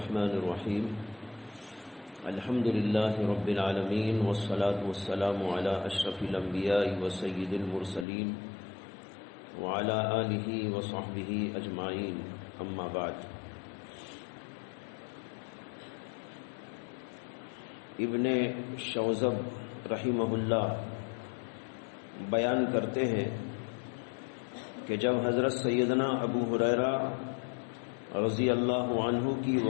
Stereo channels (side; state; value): right; drops out; at 8.1 s